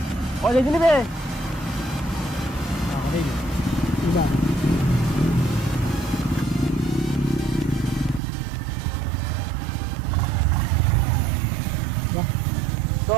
ও দেখি নিবে तो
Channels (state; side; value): drops out; left; at 8.2 s